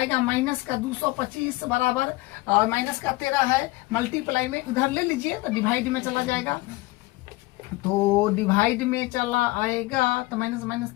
माइनस का 225 बराबर माइनस का 13 है, मल्टीप्लाई में उधर ले लीजिए तो डिवाइड में चला जाएगा, तो डिवाइड में चला आएगा तो माइनस माइनस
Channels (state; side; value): quieter; right; 20.5 dB